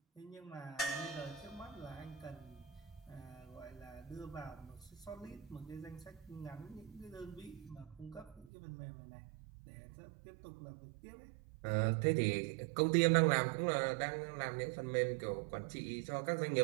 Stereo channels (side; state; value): left; drops out; at 8.5 s